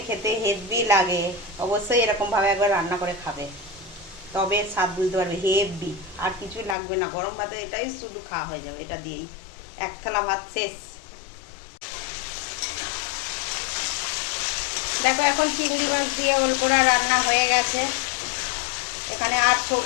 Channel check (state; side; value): drops out; right; at 6.8 s